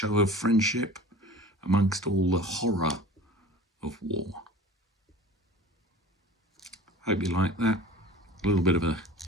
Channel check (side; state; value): both; normal; correlation 0.41